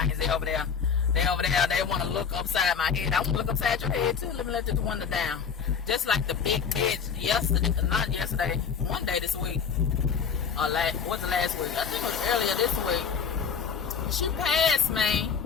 They over there. They want to look upside my head. I want to look upside your head too. Let me let this window down. Just like the big bitch not yesterday, one day this week. What's the last week? I think it was earlier this week. She passed me.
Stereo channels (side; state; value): right; quieter; 6.6 dB